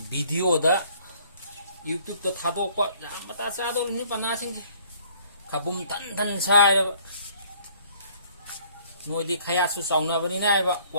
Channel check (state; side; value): inverted; both; correlation -0.59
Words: video da YouTube to thadok pa mata sa do ni pana sing khabum tan sai da noi di khaya su sauna ba ni nai ba